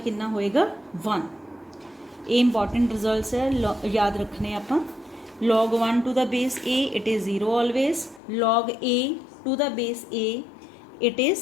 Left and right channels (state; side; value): drops out; right; at 8.2 s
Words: होएगा 1। ये इंपॉर्टेंट रिजल्ट्स है, याद रखने आपां। Log 1 to the base a it is 0 always, log a to the base a it